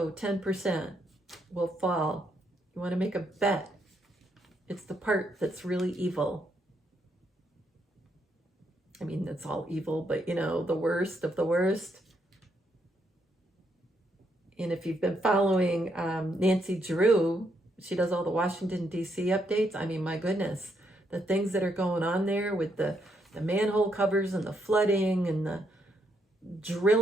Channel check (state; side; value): normal; both; correlation 0.76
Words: 10% will fall. You want to make a bet. It's the part that's really evil. I mean, it's all evil, but the worst of the worst. And if you've been following Nancy Drew, she does all the Washington, D.C. updates. I mean, my goodness, the things that are going on there with the manhole covers and the flooding and the